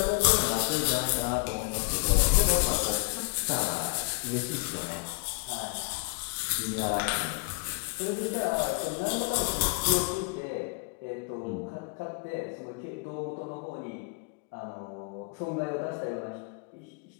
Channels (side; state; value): right; quieter; 34.5 dB